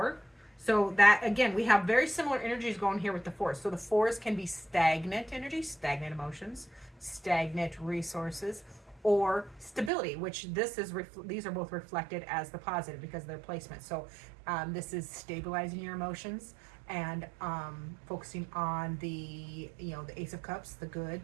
So that, again, we have very similar energies going here with the 4s. So the 4s can be stagnant energies, stagnant emotions, stagnant resources, or stability, which these are both reflected as the positive because of their placement. So this is stabilizing your emotions and focusing on the Ace of Cups, the good,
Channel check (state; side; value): drops out; left; at 9.9 s